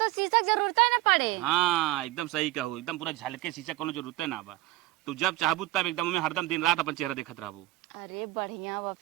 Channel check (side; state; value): left; quieter; 17.4 dB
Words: शीशा की जरूरत ही ना पड़े। हाँ एकदम सही कहू, एकदम पूरा झलके शीशा कोनो जरूरत है ना बा, तू जब चाहबू तब एकदम में हरदम दिन रात अपन चेहरा देखत रहबू। अरे बढ़िया बा